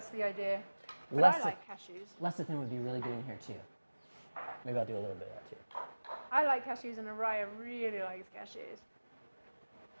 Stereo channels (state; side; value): inverted; both; correlation -1.00